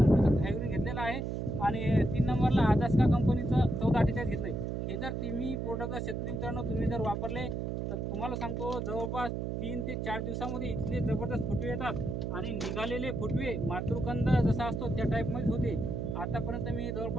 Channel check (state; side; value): noise; right; hum, 2 dB below the sound